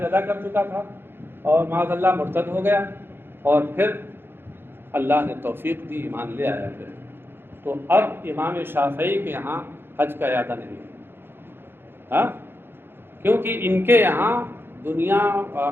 ادا کر چکا تھا، اور معاذ اللہ مرتد ہو گیا اور پھر اللہ نے توفیق دی، ایمان لے آیا پھر، تو اب امام شافعی کے یہاں حج کا اعادہ نہیں ہے. ہاں کیونکہ ان کے یہاں دنیا و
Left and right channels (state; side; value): late; left; 0.10 ms